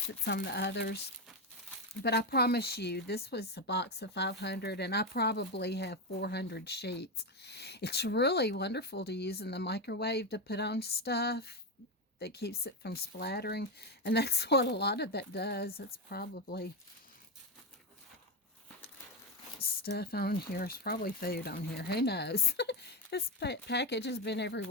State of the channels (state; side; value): normal; both; correlation 0.11